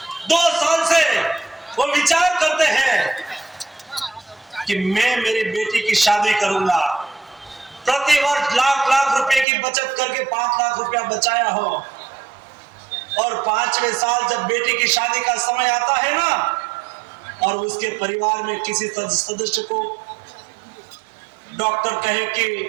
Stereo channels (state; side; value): drops out; left; at 9.5 s